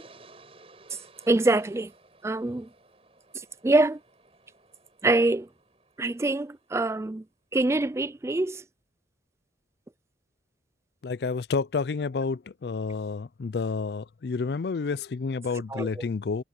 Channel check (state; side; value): normal; both; correlation 0.57